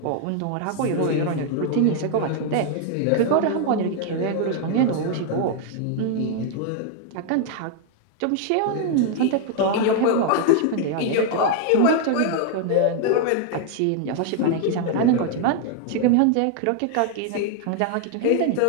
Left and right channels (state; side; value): different; both; correlation 0.00